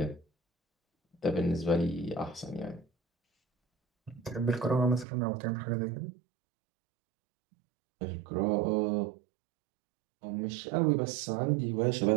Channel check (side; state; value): left; drops out; at 5.1 s